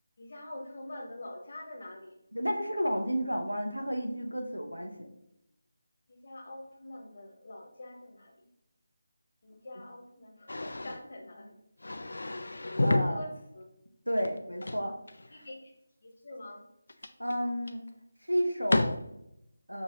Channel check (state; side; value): inverted; both; correlation -0.97